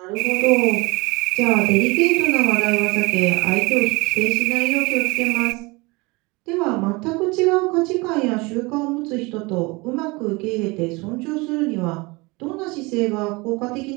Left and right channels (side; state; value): left; quieter; 25.1 dB